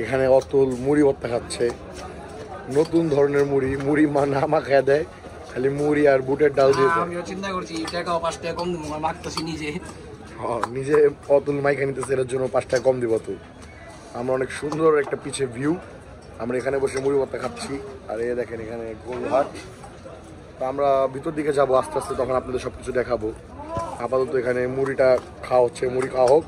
এখানে অতুল মুড়ি ভর্তা খাচ্ছে। নতুন ধরনের মুড়ি না মাখায় দেয়, খালি মুড়ি আর বুটের ডাল দিয়ে। আমিও চিন্তা করছি টাকা 5 টাকা কম দেবো, মাখতেছি নিজে। নিজে অতুল মাইকা নিতেছে, এর জন্য 5 টাকা কম দিব তো। আমরা অনেক সুন্দর একটা পিছে ভিউ, আমরা এখানে বসে মুড়ি ভর্তা খাচ্ছি। আর এই দেখেন এখানে গোলঘাট। তো আমরা ভিতর দিকে যাবো আস্তে আস্তে, তখন আপনাদের সব কিছু দেখাবো। আপাতত এখানে মুড়িটা খাওয়া হচ্ছে, মুড়ি খাওয়া হোক,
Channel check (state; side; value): identical; both; correlation 1.00